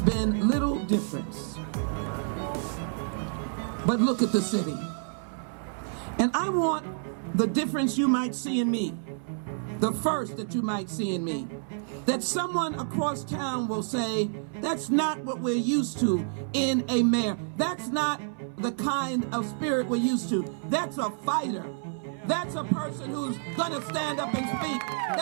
been little difference. But look at the city. And I want the difference you might see in me, the first that you might see in me, that someone across town will say, that's not what we're used to in a mayor. That's not the kind of spirit we're used to. That's a fighter. That's a person who's going to stand up and speak.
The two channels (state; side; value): silent; left; 59 dB below the other